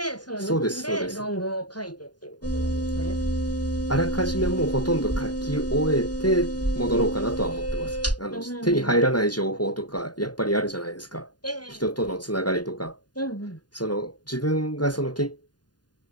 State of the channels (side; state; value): right; late; 0.70 ms